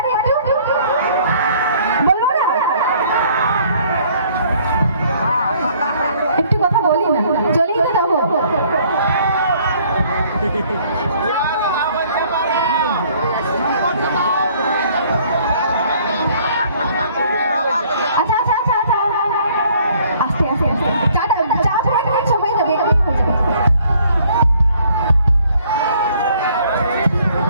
একটু? বলবো না? একটু কথা বলি না, চলেই তো যাবো। আচ্ছা আচ্ছা আচ্ছা আচ্ছা আস্তে আস্তে আস্তে চাটা চা ব্রেক নিচ্ছ, হয়ে যাবে হয়ে যাবে।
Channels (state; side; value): inverted; both; correlation -0.60